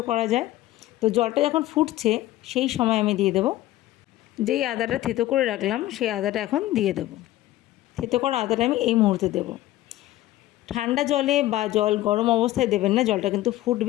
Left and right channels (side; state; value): right; quieter; 15.5 dB